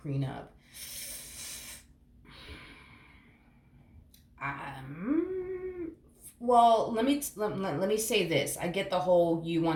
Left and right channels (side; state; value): both; identical; correlation 1.00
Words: Well, let me say this. I get the whole you